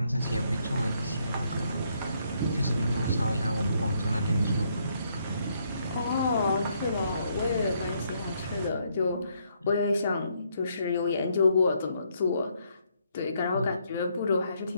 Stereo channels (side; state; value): both; inverted; correlation -0.72